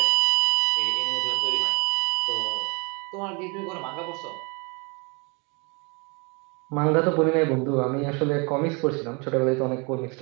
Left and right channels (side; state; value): left; quieter; 31.1 dB